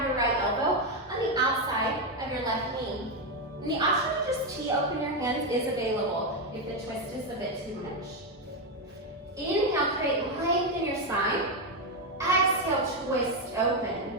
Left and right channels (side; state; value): both; normal; correlation 0.06